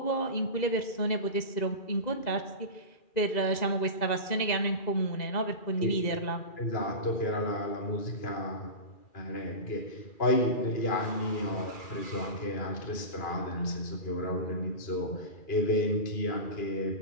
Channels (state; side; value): late; right; 2.0 ms